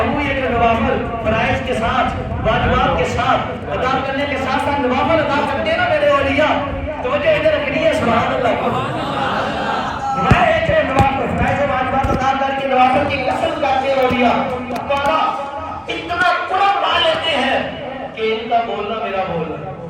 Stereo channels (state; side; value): identical; both; correlation 1.00